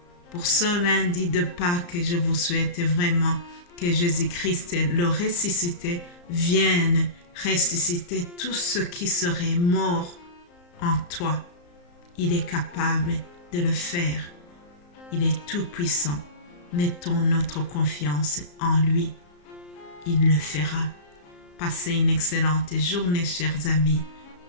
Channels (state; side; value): late; right; 34 ms